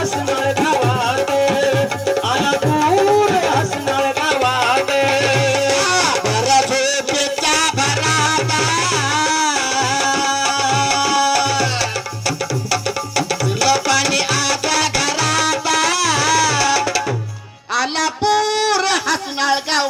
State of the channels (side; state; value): both; identical; correlation 1.00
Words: गावात आला पूर हसनाळ गावात भर झोपेच्या भरात तुला पाणी आता घरात आला पूर हसनाळ